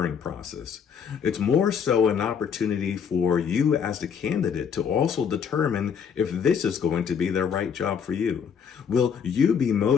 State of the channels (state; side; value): quieter; right; 7.1 dB